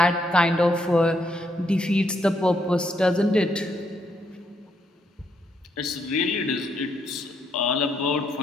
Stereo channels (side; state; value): both; normal; correlation 0.76